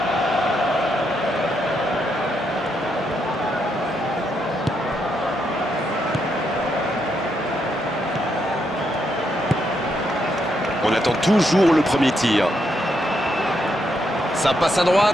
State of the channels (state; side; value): normal; both; correlation 0.79